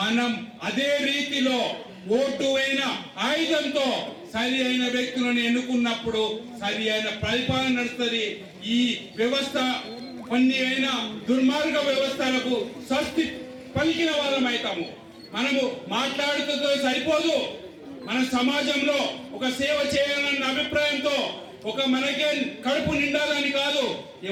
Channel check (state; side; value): identical; both; correlation 1.00